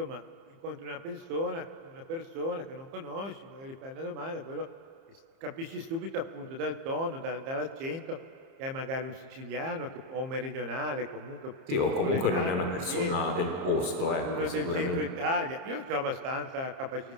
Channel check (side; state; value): left; late; 30 ms